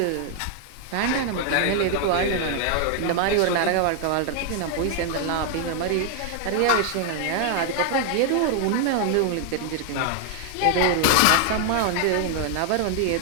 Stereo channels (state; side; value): different; both; correlation 0.00